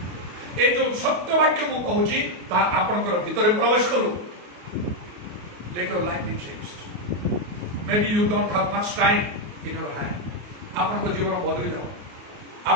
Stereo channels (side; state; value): left; late; 28 ms